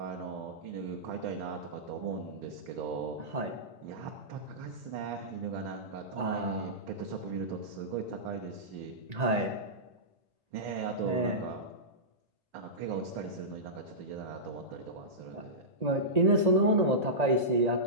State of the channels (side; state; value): left; late; 1.8 ms